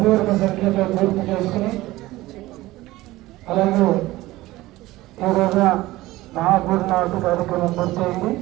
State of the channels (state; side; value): quieter; left; 17.9 dB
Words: సంఖ్యతో పూర్తి చేసుకుని అలాగే ఈ రోజున మహాపూర్ణావతి కార్యక్రమం పూర్తయింది.